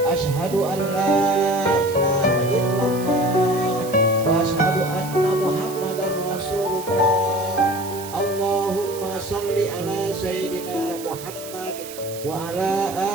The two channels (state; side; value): noise; right; hiss, 14 dB below the sound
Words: Asyhadu an la ilaha illallah wa asyhadu anna Muhammadar Rasulullah. Allahumma salli ala sayyidina Muhammad wa ala